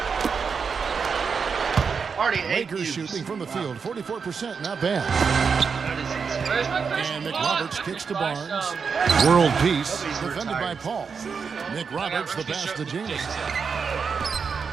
Already 8 Lakers views. shooting from the field, 44%, not bad. Where's my Christian And Paul? McRoberts kicks to Barnes. World peace, defended by Paul. McRoberts the pass to Jameson.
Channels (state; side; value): quieter; left; 5.7 dB